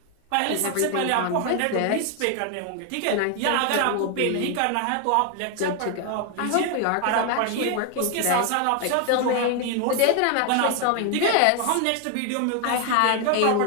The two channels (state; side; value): different; both; correlation 0.01